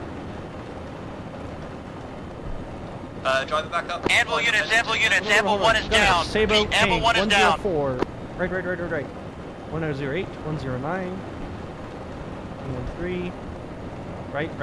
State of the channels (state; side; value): identical; both; correlation 1.00